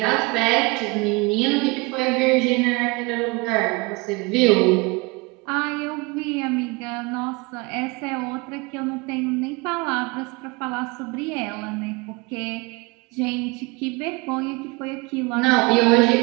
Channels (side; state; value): left; quieter; 26.8 dB